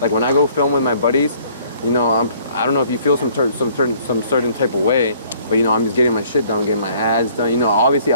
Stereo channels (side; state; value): both; inverted; correlation -0.58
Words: when I go film with my buddies, you know, I don't know if you feel some certain type of way, but you know, I'm just getting my shit done, getting my ads done. You know, obviously